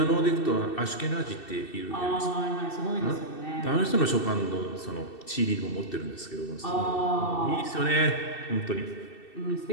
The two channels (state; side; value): late; right; 2.7 ms